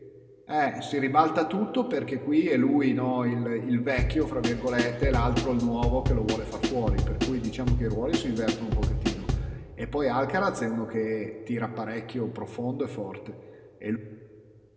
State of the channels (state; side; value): identical; both; correlation 1.00